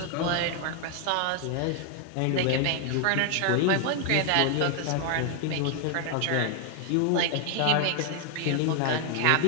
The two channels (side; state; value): both; different; correlation 0.00